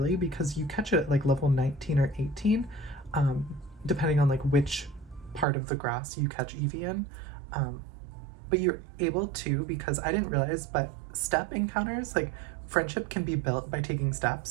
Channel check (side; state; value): left; drops out; at 5.5 s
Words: because you catch it at like level 19 or 18, depending on like which part of the grass you catch Eevee in. But you're able to, because I didn't realize, but step encounters, like friendship can be built by taking